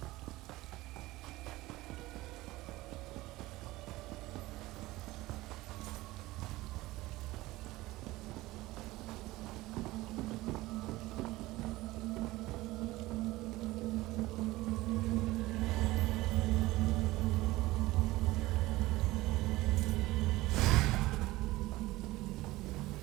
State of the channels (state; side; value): quieter; left; 18.8 dB